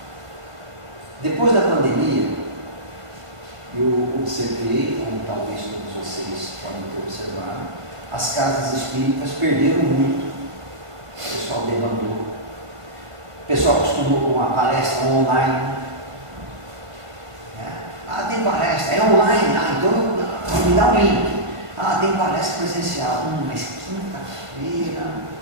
Depois da pandemia, eu observei, como talvez todos vocês podem ter observado, as casas espíritas perderam muito. O pessoal demandou. O pessoal acostumou com a palestra online. Ah, tem palestra, é online, então me dá um link. Ah, tem palestra presencial. Mas quinta-feira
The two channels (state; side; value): late; left; 1.5 ms